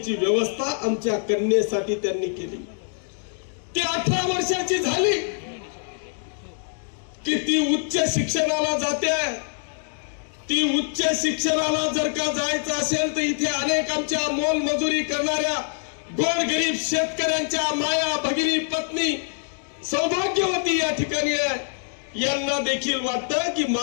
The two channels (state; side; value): silent; right; 62 dB below the other